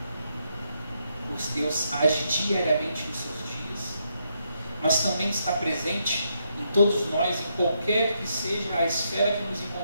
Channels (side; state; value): both; inverted; correlation -0.78